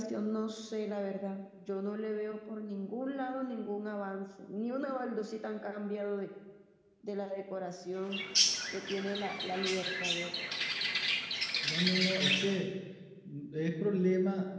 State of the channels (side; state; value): both; identical; correlation 1.00